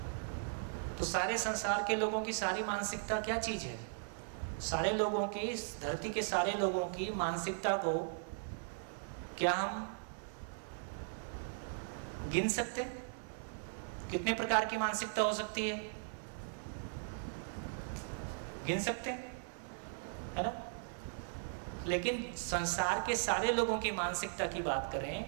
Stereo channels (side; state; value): left; silent; 52 dB below the other